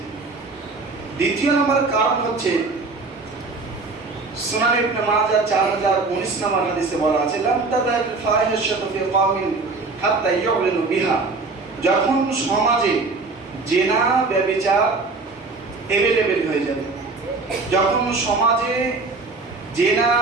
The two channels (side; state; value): left; quieter; 3.9 dB